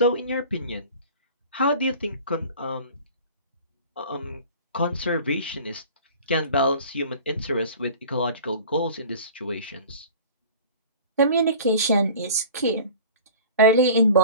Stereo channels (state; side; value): inverted; both; correlation -0.42